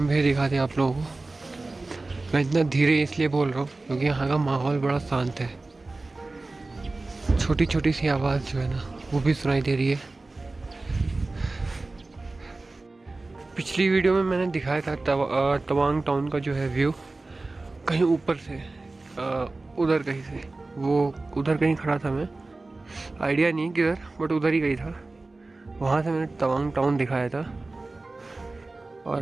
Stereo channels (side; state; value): left; quieter; 3.3 dB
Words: भी दिखाते आप लोगों को। मैं इतना धीरे इसलिए बोल रहा हूँ क्योंकि यहाँ का माहौल बड़ा शांत है। छोटी छोटी सी आवाज़ जो है ना वो भी सुनाई दे रही है। पिछली वीडियो में मैंने दिखाया था तवांग टाउन का जो है व्यू कहीं ऊपर से, उधर कहीं से, वो उधर कहीं खड़ा था मैं, आइडिया नहीं किधर, बट उधर ही कहीं था। वहाँ से मैंने तवांग टाउन दिखाया था।